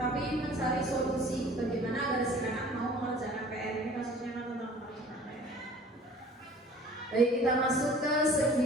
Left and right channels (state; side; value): normal; both; correlation 0.49